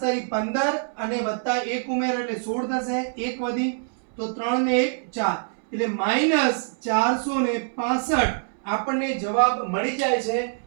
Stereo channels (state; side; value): silent; left; 62 dB below the other